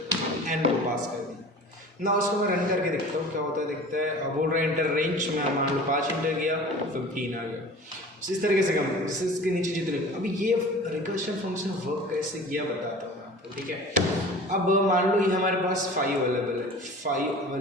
एन को पास कर दूँ ना। उसको मैं रन करके देखता हूँ क्या होता है, देखते हैं। अब बोल रहा है एंटर रेंज में मान लो 5 एंटर किया 15 आ गया। इस तरीके से कम इसके नीचे जितने। अभी ये रिकर्शन फंक्शन वर्क कैसे किया बताता हूँ मैं आपको। ठीक है, अब मान लो ये हमारे पास 5 अवेलेबल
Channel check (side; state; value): both; normal; correlation 0.41